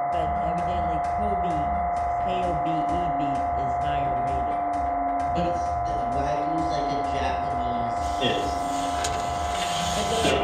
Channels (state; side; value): identical; both; correlation 1.00